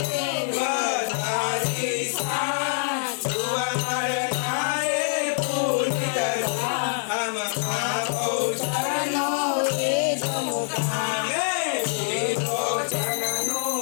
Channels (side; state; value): right; silent; digital silence